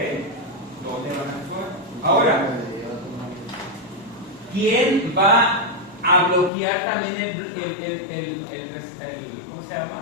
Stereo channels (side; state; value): right; drops out; at 6.5 s